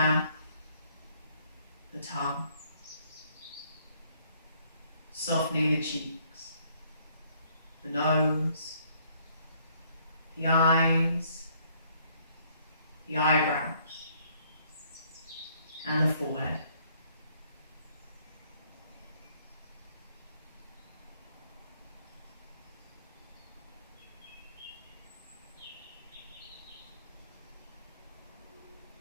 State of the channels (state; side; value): inverted; both; correlation -0.65